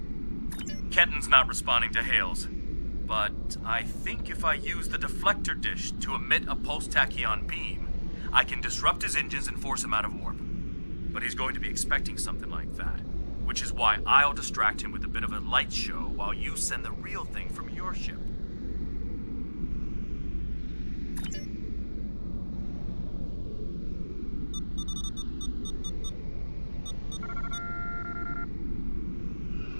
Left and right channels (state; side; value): inverted; both; correlation -1.00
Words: Ketten's not responding to hails, but I think if I use the deflector dish to emit a pulse tachyon beam, I can disrupt his engines and force him out of warp. But he's going to be expecting something like that, which is why I'll distract him with a bit of a light show while you send the real thing from your ship.